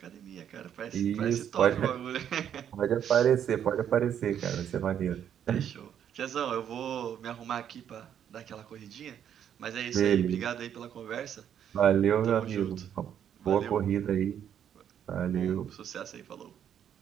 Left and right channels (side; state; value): left; quieter; 9.3 dB